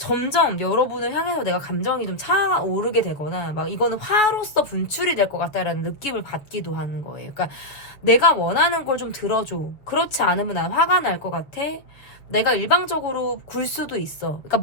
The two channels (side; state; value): right; late; 7.1 ms